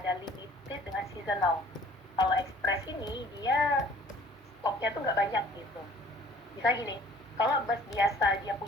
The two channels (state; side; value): normal; both; correlation 0.53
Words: limited dengan seasonal. Kalau express ini dia stopnya tuh nggak banyak gitu. Misalnya gini, kalau bus biasa dia